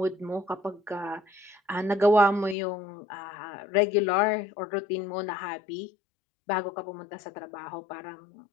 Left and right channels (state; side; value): drops out; right; at 2.6 s